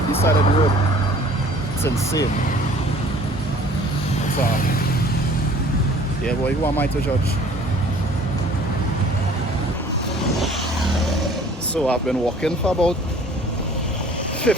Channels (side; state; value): both; normal; correlation 0.52